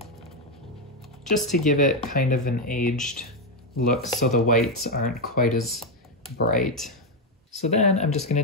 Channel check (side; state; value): both; normal; correlation 0.06